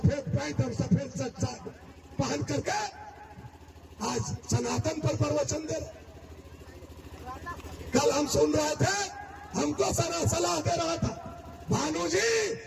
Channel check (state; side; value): identical; both; correlation 1.00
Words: पैंट और सफेद शर्ट पहन करके आज सनातन पर प्रवचन दे रहे। कल हम सुन रहे थे, हमको सलाह दे रहा था, भानु जी